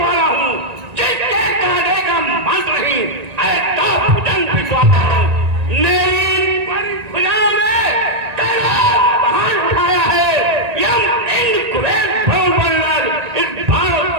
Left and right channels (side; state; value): left; late; 1.9 ms